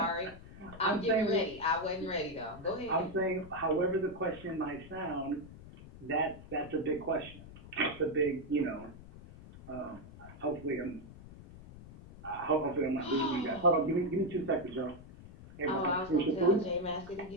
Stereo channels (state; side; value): noise; left; rumble, 17 dB below the sound